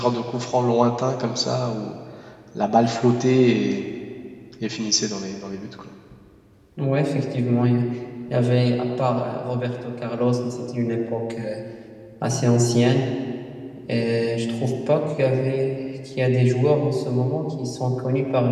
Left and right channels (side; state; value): both; identical; correlation 1.00